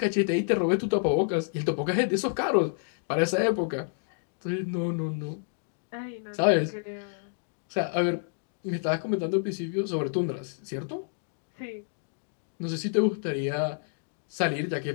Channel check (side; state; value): right; silent; digital silence